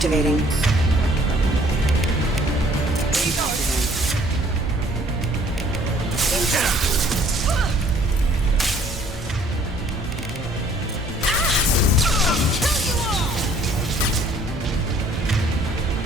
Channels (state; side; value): normal; both; correlation 0.59